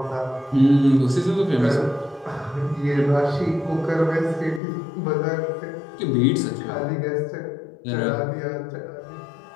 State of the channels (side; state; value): right; drops out; at 4.6 s